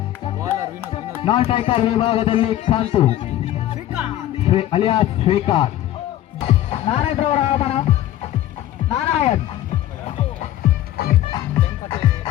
ನಾನ್ ಸ್ಟ್ರೈಕರ್ ವಿಭಾಗದಲ್ಲಿ ಕಾಂತು ಅಲಿಯಾಸ್ ಶ್ರೀಕಾಂತ್ ನಾರಾಯಣರವರ ಆಗಮನ ನಾರಾಯಣ್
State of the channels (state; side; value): quieter; right; 13.3 dB